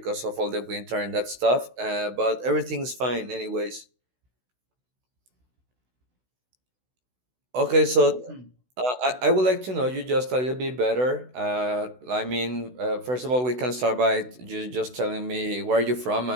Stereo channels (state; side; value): late; left; 16 ms